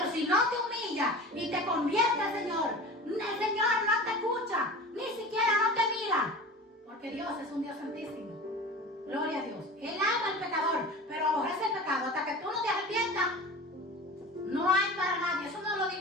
si no te humillas y te conviertes al Señor, el Señor no te escucha, ni siquiera no te mira, porque Dios es un Dios santísimo. Gloria a Dios. Él ama al pecador, pero aborrece el pecado. Hasta que tú no te arrepientas, no hay para nadie. Eso no lo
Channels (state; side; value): normal; both; correlation 0.35